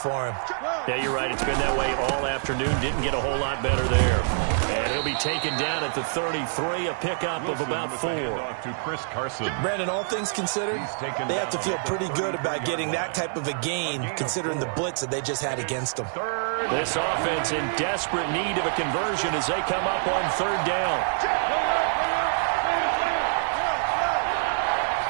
him. Yeah, you're right. It's been that way all afternoon. Didn't get a whole lot better there. And he'll be taken down at the 33, a pickup of about 4. To Chris Carson. Brandon, all things considered, they have to feel pretty good about getting that type of a gain, considering the blitz that they just had against them. This offense in desperate need of a conversion as they come up on 3rd down.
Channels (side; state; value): left; silent; digital silence